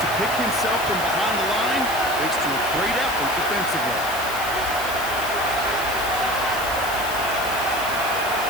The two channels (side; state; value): left; noise; hiss, 10 dB below the sound